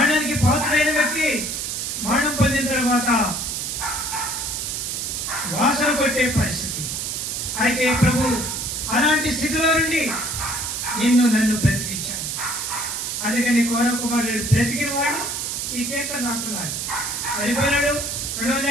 పాత్రైన వ్యక్తి మరణం పొందిన తర్వాత వాసన కొట్టే పరిస్థితి. అయితే ప్రభు అలాంటి స్థితిలో నుండి నన్ను బ్రతికించాడు. అందుకని కౌరవ కుమారుడు బ్రతికిన వాడు ఈ కీర్తన రాస్తున్నారు. చనిపోయినాడు,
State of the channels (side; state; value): right; noise; hiss, 3 dB below the sound